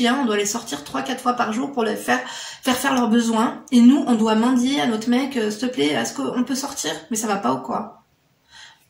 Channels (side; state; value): both; identical; correlation 1.00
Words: on doit les sortir 3-4 fois par jour pour les faire leurs besoins. Et nous, on doit mendier à notre mec « s'il te plaît, est-ce qu'on peut sortir ?» Mais ça va pas ou quoi?